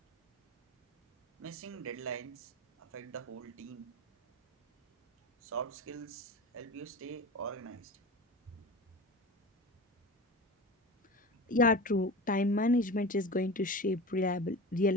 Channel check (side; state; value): both; normal; correlation 0.31